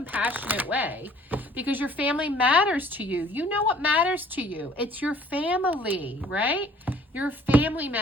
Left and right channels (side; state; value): both; normal; correlation 0.55